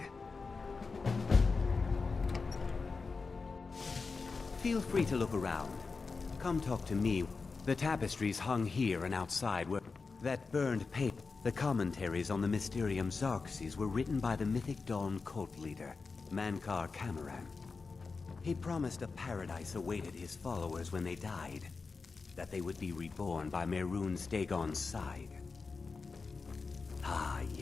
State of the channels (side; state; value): right; quieter; 4.4 dB